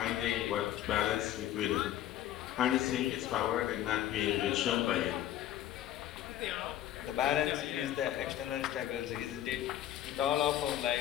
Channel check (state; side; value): quieter; right; 12.4 dB